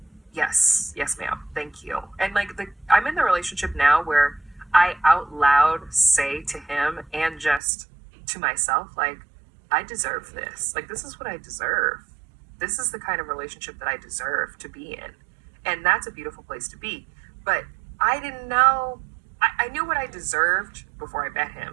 yes, ma'am, thank you. And like I'm in the relationship now where I out loud say to him and just to myself, like, I deserve this. Like, this is what I deserve. This is the kind of relationship that I deserve to be in. And that's a beautiful place to be. But I didn't know, I knew what I deserved before I met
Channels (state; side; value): drops out; left; at 7.6 s